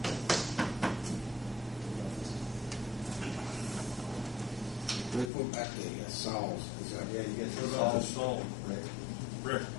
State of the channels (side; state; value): right; drops out; at 5.3 s